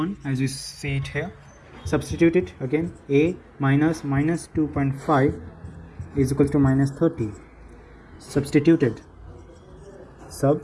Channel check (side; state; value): both; identical; correlation 1.00